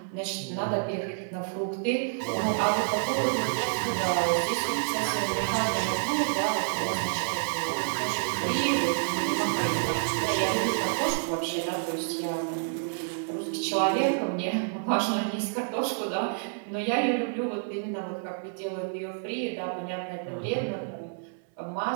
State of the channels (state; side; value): silent; left; 58 dB below the other